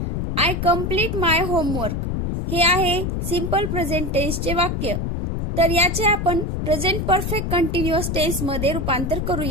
आय कम्प्लीट माय होमवर्क हे आहे सिंपल प्रेझेंट टेन्सचे वाक्य. तर याचे आपण प्रेझेंट परफेक्ट कंटिन्युअस टेन्स मध्ये रूपांतर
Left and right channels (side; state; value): left; noise; rumble, 2 dB below the sound